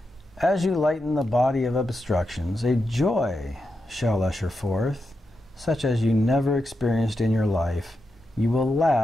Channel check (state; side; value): normal; both; correlation 0.87